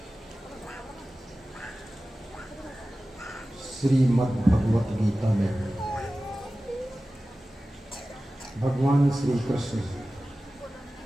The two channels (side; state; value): both; normal; correlation 0.96